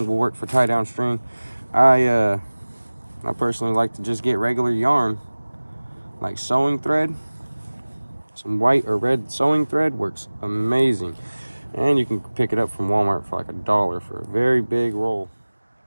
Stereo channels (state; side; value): inverted; both; correlation -1.00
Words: will work for tie down string. I personally like to just get regular yarn, like sewing thread. Some white or red sewing thread works amazing. And you can pick it up from Walmart for like $1 for a very big roll.